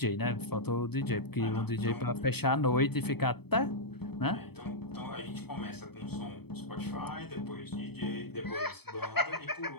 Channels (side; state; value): right; late; 0.97 ms